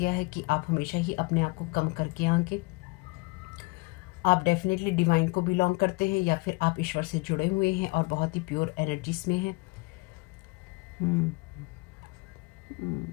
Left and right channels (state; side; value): quieter; right; 26.5 dB